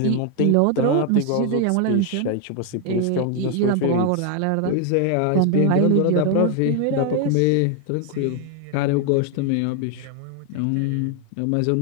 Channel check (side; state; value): both; different; correlation 0.01